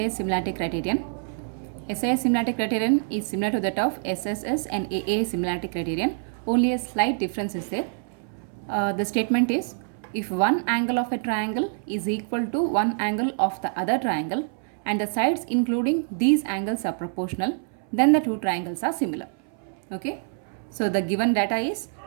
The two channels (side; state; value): left; silent; 61 dB below the other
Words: similarity criterion. SAS similarity criterion is similar to that of SSS and AA similarity criterion, only a slight difference is there. The statement is, if one angle of a triangle is equal to one angle of the other triangle and the sides including these angles are proportional, then the two triangles are similar. Okay, so the given data is,